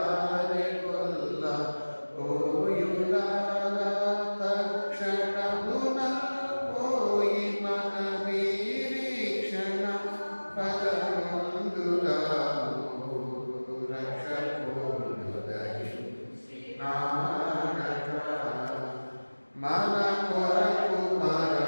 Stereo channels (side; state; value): both; inverted; correlation -1.00